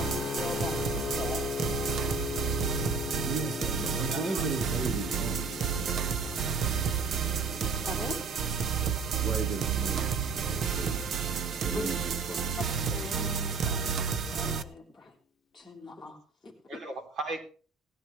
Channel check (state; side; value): quieter; left; 4.3 dB